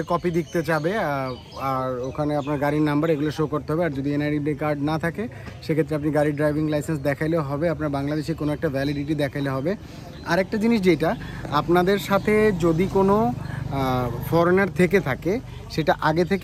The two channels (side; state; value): both; identical; correlation 1.00